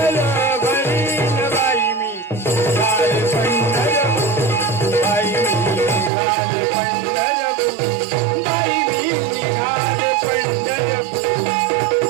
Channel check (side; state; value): left; drops out; at 6.1 s